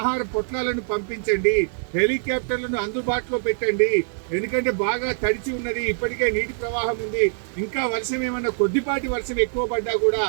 పొట్లాలను పంపించండి, హెలికాప్టర్లను అందుబాటులో పెట్టండి. ఎందుకంటే బాగా తడిచి ఉన్నది, ఇప్పటికే నీటి ప్రవాహం ఉంది. ఇంకా వర్షం ఏమన్నా కొద్దిపాటి వర్షం ఎక్కువ పడ్డా కూడా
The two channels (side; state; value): left; silent; digital silence